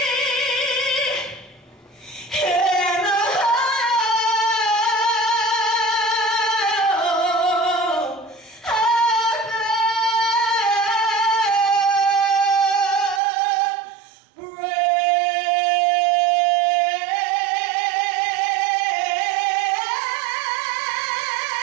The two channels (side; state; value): left; drops out; at 13.2 s